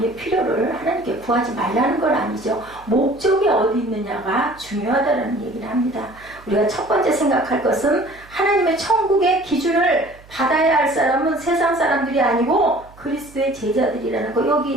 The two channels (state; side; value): noise; right; hum, 24 dB below the sound